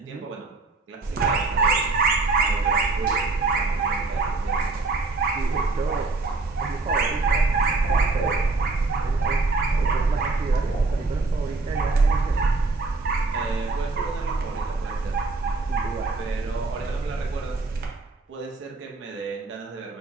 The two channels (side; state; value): left; quieter; 3.6 dB